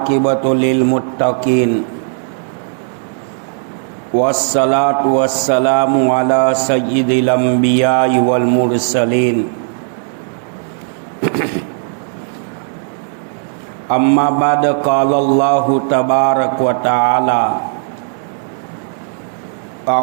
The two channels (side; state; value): left; silent; 60 dB below the other